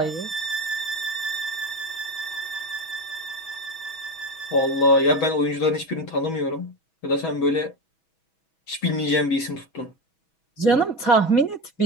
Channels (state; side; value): late; right; 6.2 ms